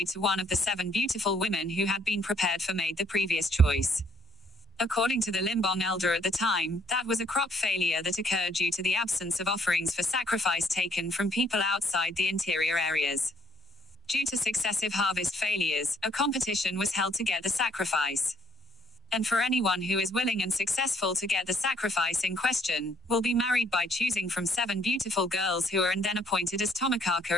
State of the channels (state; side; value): normal; both; correlation 0.66